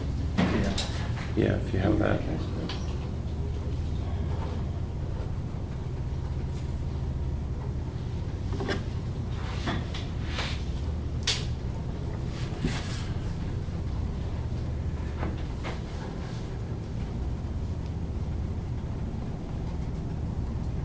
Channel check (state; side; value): identical; both; correlation 1.00